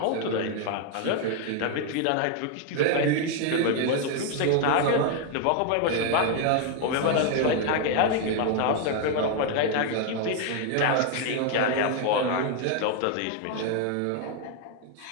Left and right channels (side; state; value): both; different; correlation 0.00